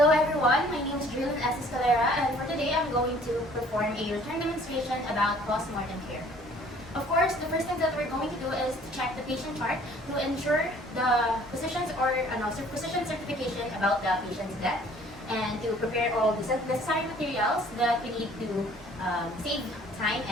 everyone, my name is Julian S. Escalera, and for today I'm going to perform a return demonstration about post-mortem care. Of course, the first thing that we're going to do is to check the patient chart to ensure the physician's physician certification about the patient's death, and to prepare all the necessary materials that we need to save time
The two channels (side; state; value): both; normal; correlation 0.55